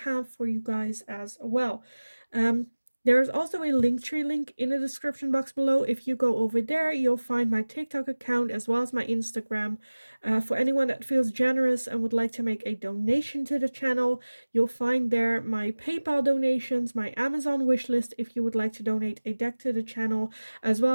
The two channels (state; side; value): inverted; both; correlation -1.00